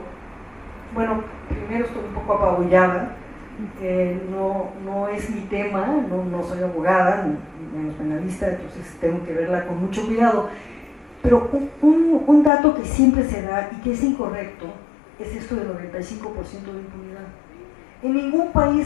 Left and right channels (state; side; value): drops out; right; at 12.5 s